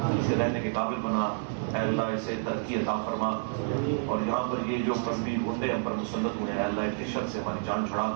اسے رہنے کے قابل بنا. اے اللہ اسے ترقی عطا فرما. اور یہاں پر یہ جو مذہبی گنڈے ہم پر مسلط ہوئے ہیں، اے اللہ ان کی شر سے ہماری جان چھڑا.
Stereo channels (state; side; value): silent; left; digital silence